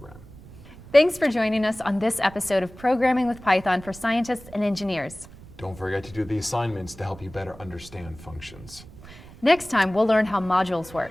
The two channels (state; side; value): noise; right; rumble, 19 dB below the sound